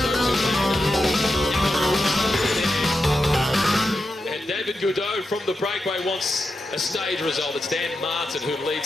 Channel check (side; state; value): both; normal; correlation 0.88